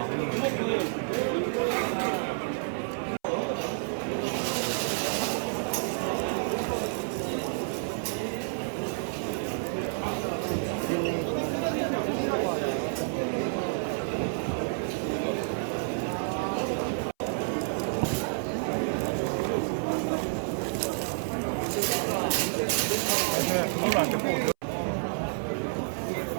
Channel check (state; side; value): silent; left; 58 dB below the other